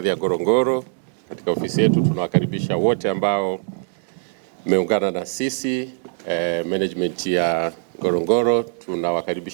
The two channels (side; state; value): left; silent; 64 dB below the other